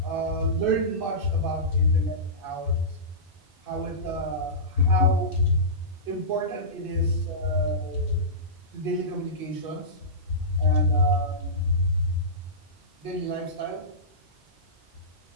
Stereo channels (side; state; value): both; normal; correlation -0.20